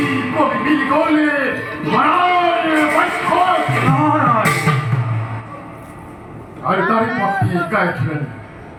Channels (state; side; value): identical; both; correlation 1.00